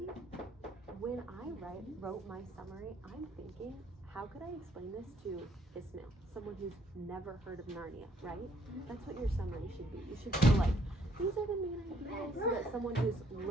when I wrote my summary, I'm thinking, how could I explain this to Ismail, someone who's never heard of Narnia, right? That's what your summary should be. You should feel like, these are the main ideas, so that someone who's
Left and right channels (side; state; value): both; normal; correlation 0.66